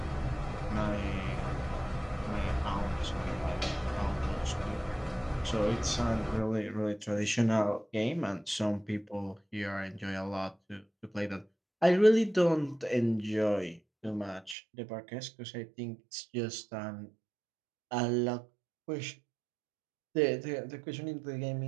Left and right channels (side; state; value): left; drops out; at 14.6 s